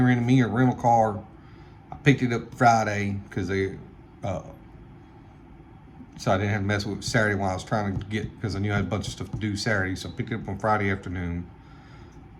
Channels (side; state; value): both; identical; correlation 1.00